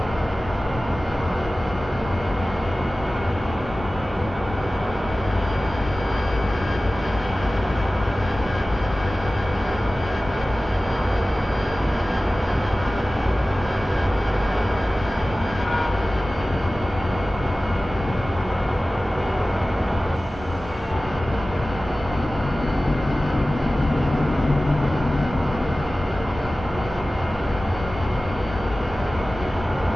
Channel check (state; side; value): normal; both; correlation 0.97